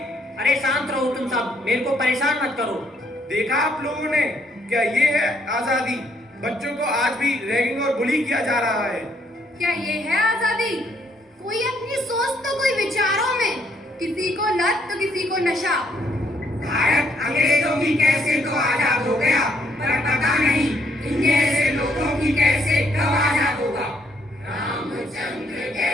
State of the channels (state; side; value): normal; both; correlation 0.70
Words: अरे शांत रहो तुम सब, मेरे को परेशान मत करो। देखा आप लोगों ने, क्या ये है आजादी? बच्चों को आज भी रैगिंग और बुली किया जा रहा है। क्या ये है आजादी? कोई अपनी सोच तो कोई विचारों में, किसी को लत तो किसी को नशा। भारत अंग्रेजों की कैसे तो आजाद हो गया, पर पता नहीं इन जैसे लोगों की कैसे कब आजाद होगा। रामचंद्र